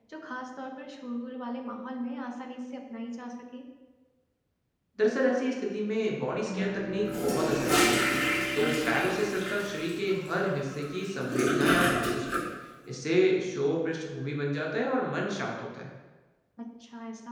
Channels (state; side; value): identical; both; correlation 1.00